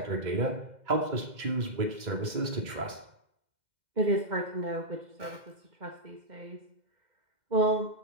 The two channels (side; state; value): left; late; 2.1 ms